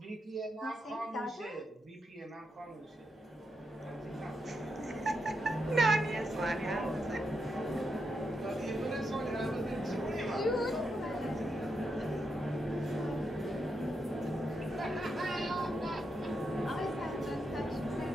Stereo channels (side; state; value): both; normal; correlation 0.83